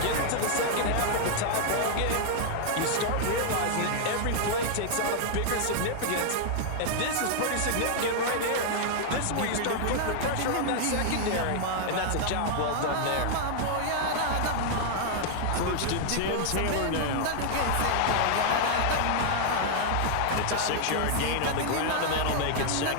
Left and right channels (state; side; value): different; both; correlation -0.01